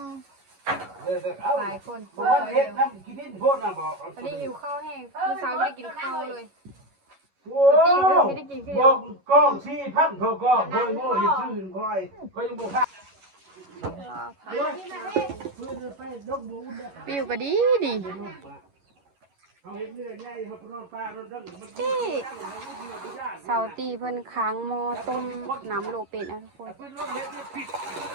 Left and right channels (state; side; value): late; left; 11 ms